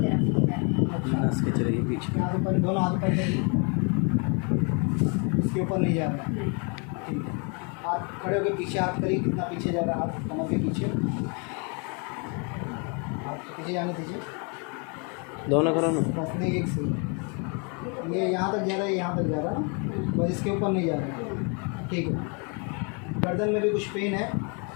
इधर है। नस के चलेगी पीछे, हाथ ऊपर, दोनों हाथ ऊपर करिए, इसके ऊपर नहीं जा रहा है। ठीक है, हाथ खड़े होकर पीछे हाथ करिए, कितना पीछे जा रहा है हाथ कमर के पीछे, हाथ पीछे जाने दीजिए, दोनों करो ना, बस नहीं एक से ये यहाँ तक जा रहा है, यहाँ तक जा रहा है, बस इसके ऊपर नहीं जा रहा है। ठीक है, गर्दन में भी कुछ पेन है?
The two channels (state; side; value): quieter; right; 35.4 dB